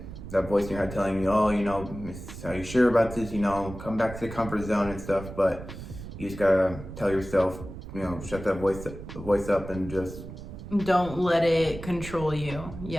that voice in your head telling you, oh, are you sure about this? Come back to the comfort zone and stuff. But you just gotta tell yourself, shut that voice up and just don't let it control you.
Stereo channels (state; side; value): noise; right; rumble, 12 dB below the sound